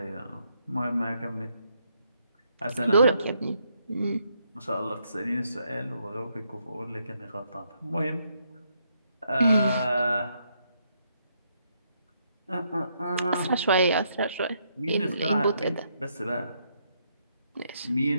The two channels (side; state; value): both; inverted; correlation -0.75